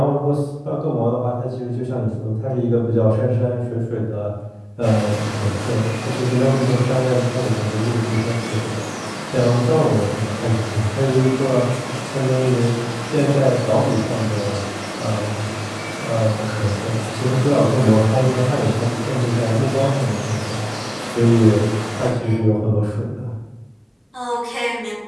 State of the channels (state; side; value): identical; both; correlation 1.00